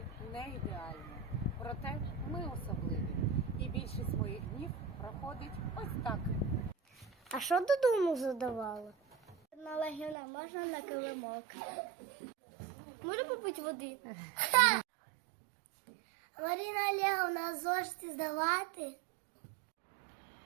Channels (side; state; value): left; drops out; at 10.2 s